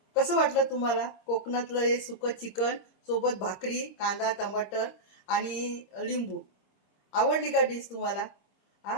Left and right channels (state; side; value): late; right; 26 ms